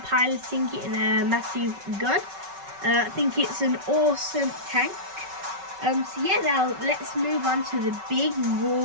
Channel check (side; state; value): left; late; 5.3 ms